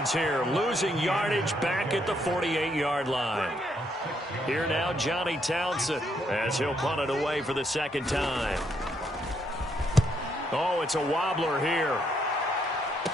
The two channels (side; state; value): both; normal; correlation 0.74